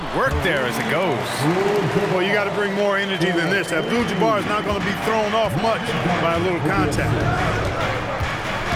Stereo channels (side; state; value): both; identical; correlation 1.00